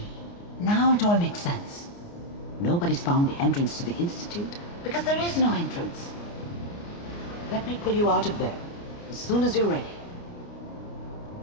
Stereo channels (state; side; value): late; right; 29 ms